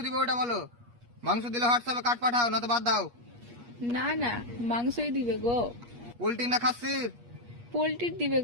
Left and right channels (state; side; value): late; left; 8.4 ms